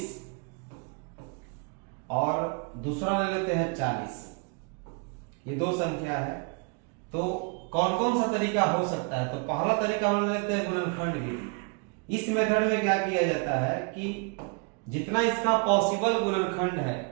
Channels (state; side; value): quieter; left; 34.4 dB